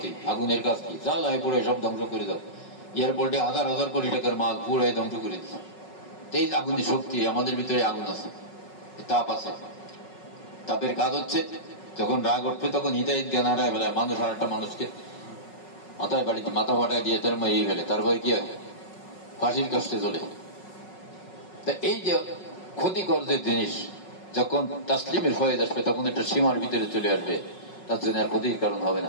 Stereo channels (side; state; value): right; late; 5.4 ms